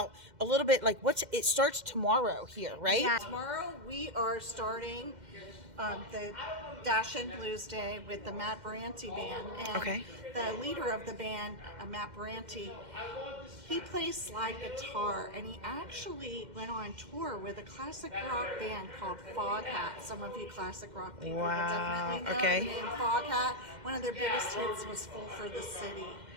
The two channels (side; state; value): left; late; 2.1 ms